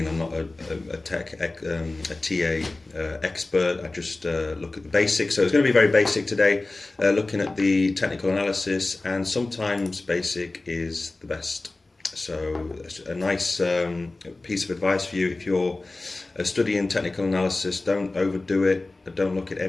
I'm not a TA expert. I just look at the basics. So it's going to be very basic today, looking at the technical analysis, and sometimes basic is the best. So a nice piece of advice for you: if you're studying technical analysis, don't overdo it. Don't look at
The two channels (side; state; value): right; quieter; 3.1 dB